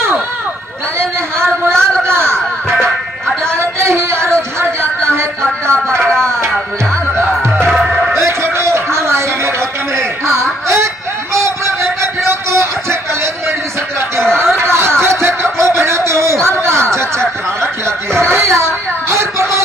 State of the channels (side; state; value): both; normal; correlation 0.67